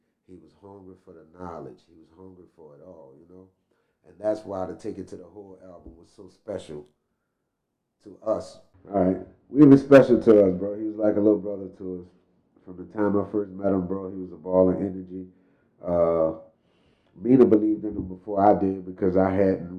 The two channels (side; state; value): both; identical; correlation 1.00